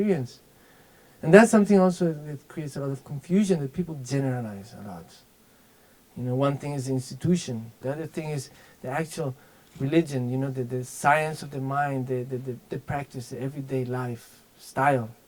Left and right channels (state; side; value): identical; both; correlation 1.00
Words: And that's something also that creates a lot of confusion, that people generalize a lot. One thing is the institution, the other thing is the actual religion, the science of the mind, the practice, the everyday life style.